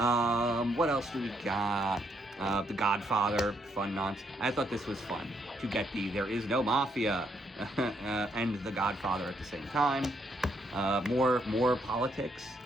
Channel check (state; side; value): normal; both; correlation 0.74